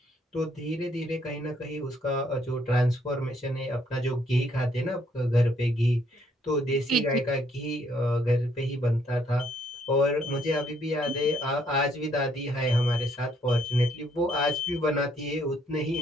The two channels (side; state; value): both; normal; correlation 0.69